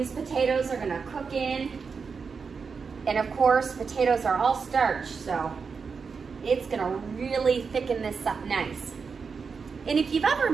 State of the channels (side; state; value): left; quieter; 5.4 dB